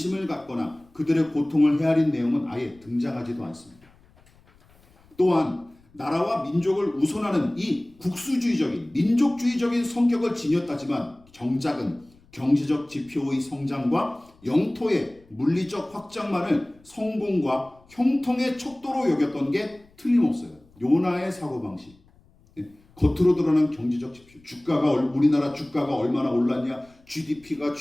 갖거나 그들의 고통을 헤아린 내용은 아예 등장하지도 않습니다. 또한 나라와 민족을 우선하는 이 국수주의적인 민족주의적인 성격을 지녔다지만 정작은 경제적 지표의 성장과 영토의 물리적 확장만을 성공과 형통의 척도로 여겼던 게 틀림없어요. 요나의 사고방식. 겉으로 드러난 경제적 지표, 우리나라 주가가 얼마나 올랐냐, GDP가,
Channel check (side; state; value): left; noise; rumble, 29 dB below the sound